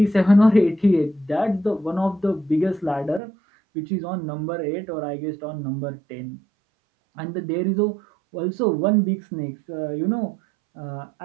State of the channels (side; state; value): left; drops out; at 3.2 s